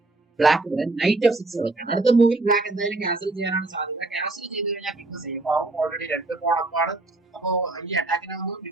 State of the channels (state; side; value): quieter; left; 3.0 dB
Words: ബ്ലാക്ക് ഇവിടെ നൈറ്റ് F6 കളിക്കാണ്. അടുത്ത മൂവിൽ ബ്ലാക്ക് എന്തായാലും ക്യാൻസൽ ചെയ്യാനാണ് സാധ്യത. ക്യാൻസൽ ചെയ്ത് കഴിഞ്ഞാൽ കിങ് സേഫ് ആവും. ഓൾറെഡി 2 പോണപ്പാണ്. അപ്പോ ഈ അറ്റാക്കിനെ ഒന്ന്